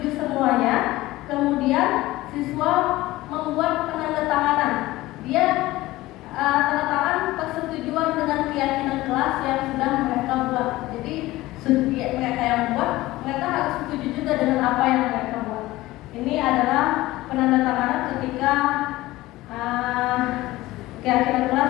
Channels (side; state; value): right; quieter; 18.0 dB